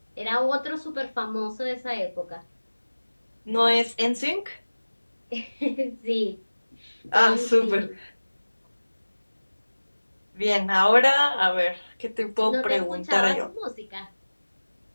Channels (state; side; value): inverted; both; correlation -1.00